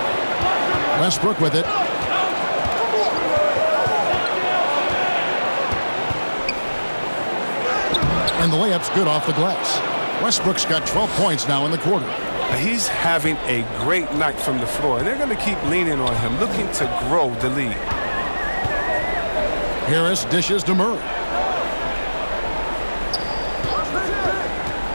Westbrook with it. And the layup's good off the glass. Westbrook's got 12 points now in the quarter. He's having a great night from the floor, and they're going to keep leaning on him, looking to grow the lead. Harris dishes to Murray.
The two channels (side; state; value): both; inverted; correlation -1.00